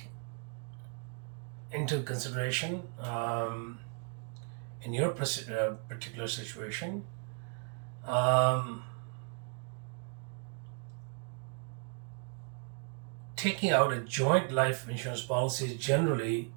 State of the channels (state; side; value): quieter; left; 39.4 dB